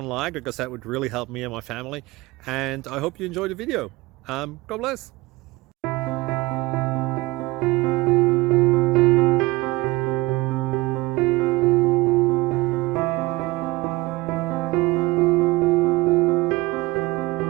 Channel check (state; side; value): quieter; left; 21.3 dB